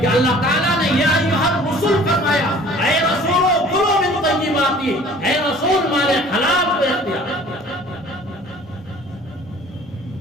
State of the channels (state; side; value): normal; both; correlation 0.50